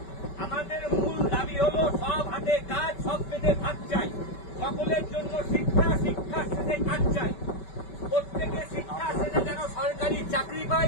আমাদের মূল দাবি হলো সব হাতে কাজ, সব পেটে ভাত চাই। সকলের জন্য শিক্ষা, শিক্ষা শেষে কাজ চাই। প্রত্যেকে শিক্ষা শেষে যেন সরকারি চাকরি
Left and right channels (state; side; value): late; right; 5.2 ms